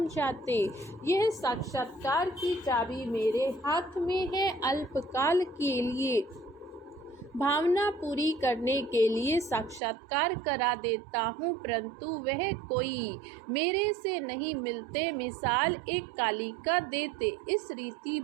यह साक्षात्कार की चाबी मेरे हाथ में है। अल्पकाल के लिए भावना पूरी करने के लिए साक्षात्कार करा देता हूँ, परंतु वह कोई मेरे से नहीं मिलते। मिसाल एक कालिका देते, इस रीति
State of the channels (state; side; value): drops out; left; at 9.8 s